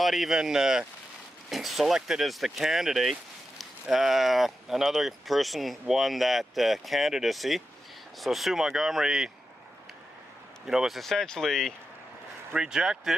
even selected as the candidate. Another person won that candidacy. So Sue Montgomery, was essentially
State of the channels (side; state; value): both; normal; correlation 0.90